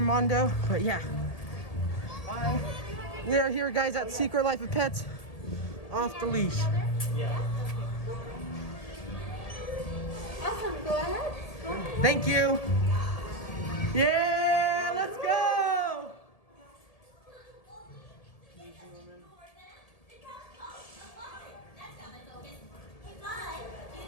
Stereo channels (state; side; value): late; right; 1.8 ms